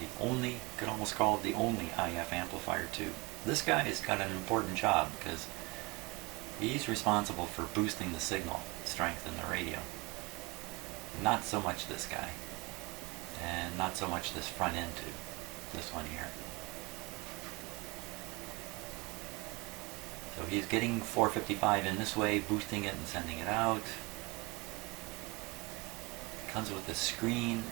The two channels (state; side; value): quieter; left; 25.4 dB